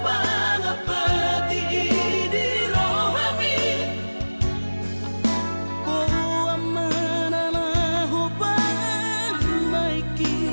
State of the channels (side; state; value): both; inverted; correlation -1.00